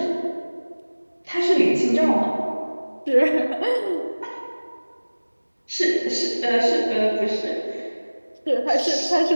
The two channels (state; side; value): inverted; both; correlation -1.00